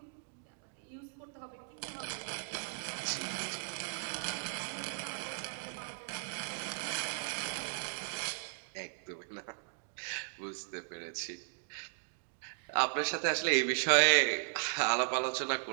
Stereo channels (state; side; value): silent; left; digital silence